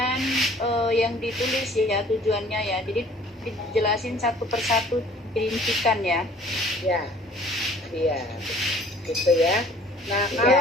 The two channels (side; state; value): both; normal; correlation 0.53